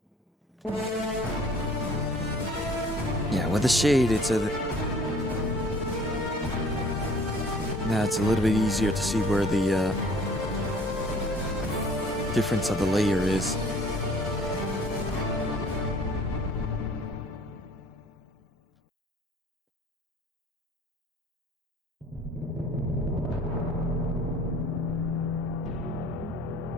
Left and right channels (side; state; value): both; normal; correlation 0.53